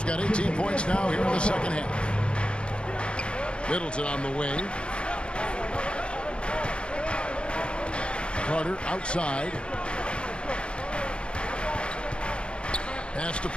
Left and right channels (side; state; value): right; late; 0.056 ms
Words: got 18 points now here in the second half. Middleton on the wing. Carter outside. Pass to